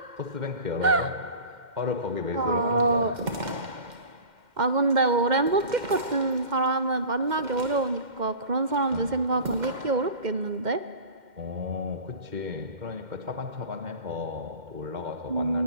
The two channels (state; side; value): late; left; 2.1 ms